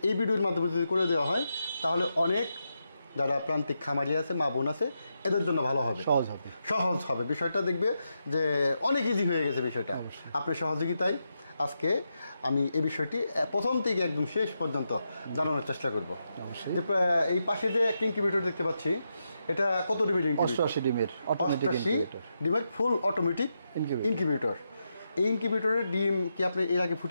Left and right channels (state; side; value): inverted; both; correlation -0.85